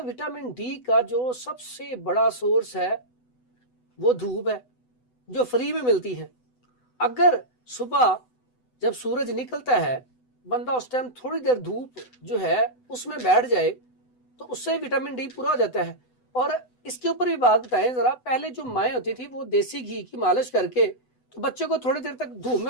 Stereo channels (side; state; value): right; late; 8.0 ms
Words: विटामिन डी का जो सबसे बड़ा सोर्स है वो धूप है, जो फ्री में मिलती है। अगर सुबह जब सूरज निकलता है, बंदा उस टाइम थोड़ी देर धूप जो है उसमें बैठ जाए तो उससे विटामिन डी पूरा हो जाता है। और इसके ऊपर भी बात बताएं जरा, पहले जो माएँ होती थी वो देसी घी की मालिश करके तो बच्चे को थोड़ी देर तक धूप